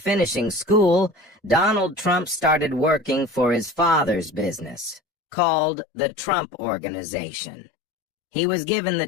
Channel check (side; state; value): right; drops out; at 5.0 s